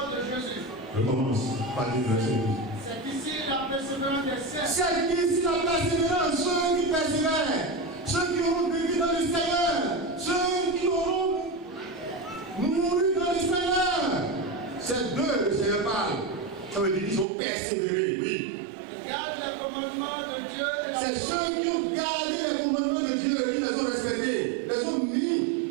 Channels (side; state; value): left; drops out; at 17.2 s